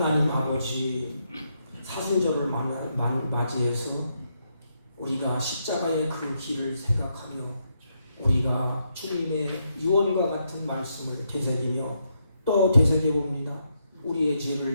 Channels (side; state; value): both; inverted; correlation -0.79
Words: 아버지, 사순절을 맞이해서 우리가 십자가의 그 길을 생각하며 우리가 주님의 유언과 같은 말씀을 되새기며 또 되새겨봅니다. 우리의